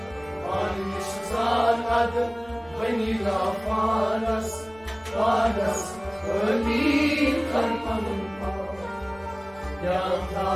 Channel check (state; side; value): noise; right; rumble, 25 dB below the sound